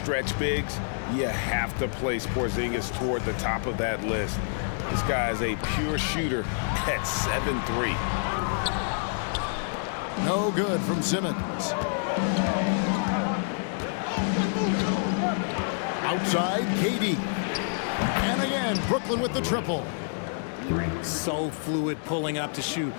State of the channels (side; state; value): right; silent; 60 dB below the other